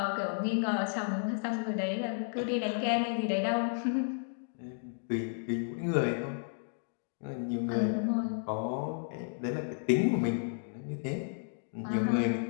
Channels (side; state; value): right; silent; digital silence